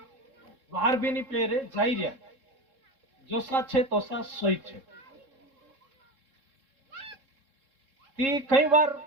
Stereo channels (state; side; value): late; left; 3.7 ms